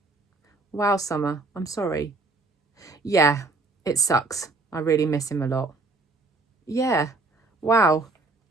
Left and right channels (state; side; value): quieter; left; 3.4 dB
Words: "Wow, Summer, I'm sorry." "Yeah, it sucks. I really miss him a lot." "Yeah, wow."